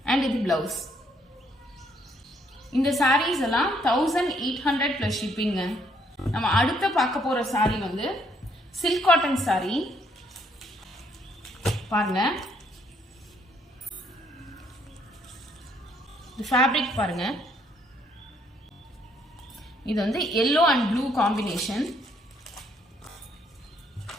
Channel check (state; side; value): normal; both; correlation 0.69